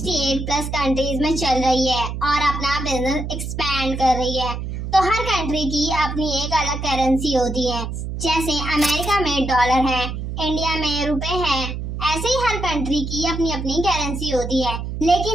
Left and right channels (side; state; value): right; noise; hum, 5 dB below the sound